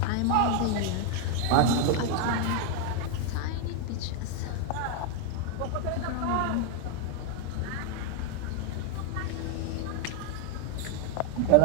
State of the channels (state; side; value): different; both; correlation 0.01